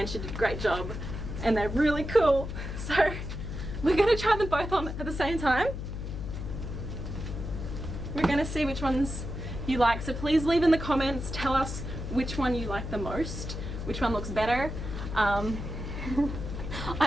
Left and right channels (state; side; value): noise; left; hum, 6 dB below the sound